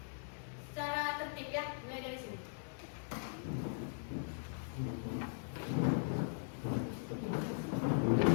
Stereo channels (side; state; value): right; silent; digital silence